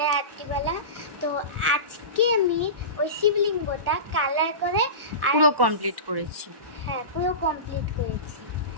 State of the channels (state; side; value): late; left; 1.1 ms